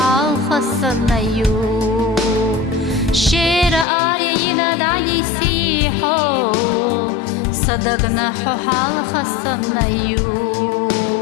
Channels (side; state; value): right; drops out; at 3.9 s